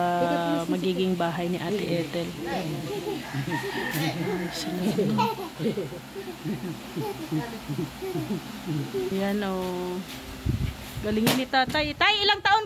magiging bahay ni Ate Ethel. Yan galingin ni tatay. Tay, ilang taon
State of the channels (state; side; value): identical; both; correlation 1.00